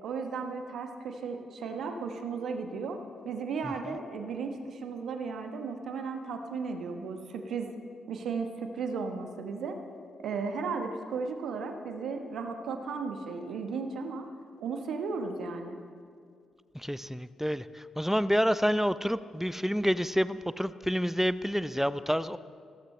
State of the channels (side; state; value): both; normal; correlation 0.88